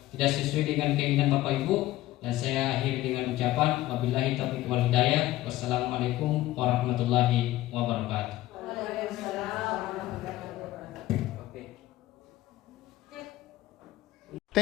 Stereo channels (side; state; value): right; quieter; 15.9 dB